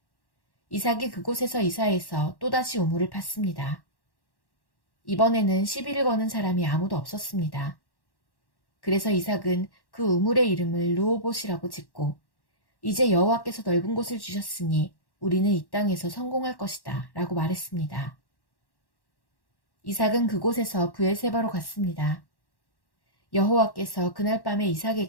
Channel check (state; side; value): late; right; 1.1 ms